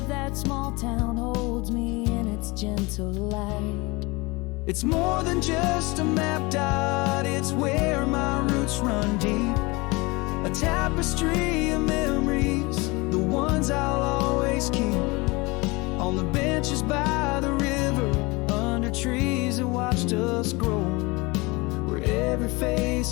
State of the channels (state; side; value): quieter; right; 25.0 dB